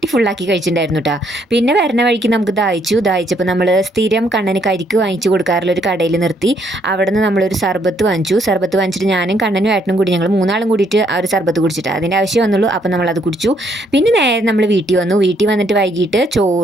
ഫുള്ളാക്കി കഴിച്ചിട്ടുണ്ടായിരുന്നു കേട്ടോ. പിന്നെ വരുന്ന വഴിക്ക് നമുക്ക് ദാഹിച്ചപ്പോൾ നമ്മൾ സ്ഥിരം കണ്ണന് കരിക്ക് വാങ്ങിച്ചു കൊടുക്കാറുള്ള ഒരു കടയിൽ നിർത്തി. അവിടെ നിന്ന് നമ്മളൊരു സർബത്ത് വാങ്ങിച്ചിട്ട് ഞാനും കണ്ണനും ഏട്ടനും കൂടി ഞങ്ങൾ 3 ആളും കൂടിയിട്ട് ആ ഒരു സർബത്ത് കുടിച്ചിട്ട് അതിൻ്റെ ആവശ്യം വന്നുള്ളൂ. അപ്പം നമ്മളത് കുടിച്ചു. പിന്നെ നേരെ നമ്മൾ വീട്ടിൽ വന്നിട്ട് വൈകിട്ട്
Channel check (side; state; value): both; normal; correlation 0.70